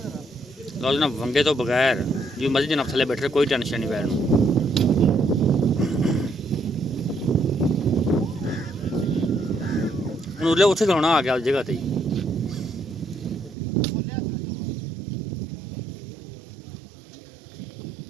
ਜਰਾ ਲਓ ਜਨਾਬ ਵੰਗੇ ਤੋਂ ਬਗੈਰ ਜੀ ਮਰਜ਼ੀ ਜਨਾਬ ਥੱਲੇ ਬੈਠੇ ਕੋਈ ਟੈਨਸ਼ਨ ਨਹੀਂ ਪੈਣ ਨੂੰ ਹੁਣ ਉਰਲੇ ਉੱਥੇ ਖਲੋਣਾ ਆ ਗਿਆ ਉਸ ਜਗ੍ਹਾ ਤੇ ਹੀ। ਬੋਲਿਆ ਸੀ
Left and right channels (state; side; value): drops out; left; at 13.6 s